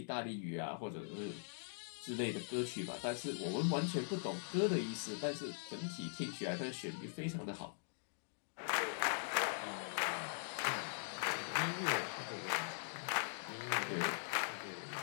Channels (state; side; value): silent; right; digital silence